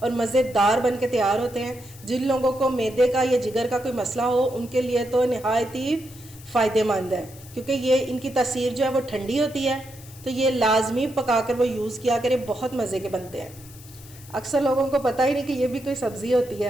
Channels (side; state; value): left; noise; hiss, 20 dB below the sound